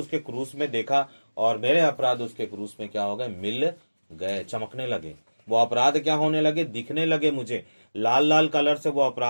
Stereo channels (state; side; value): inverted; both; correlation -1.00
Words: क्रूस में देखा और मेरे अपराध उसके क्रूस में क्या हो गए, मिल गए, चमकने लगे। वो अपराध क्या होने लगे, दिखने लगे मुझे, लाल लाल कलर से वो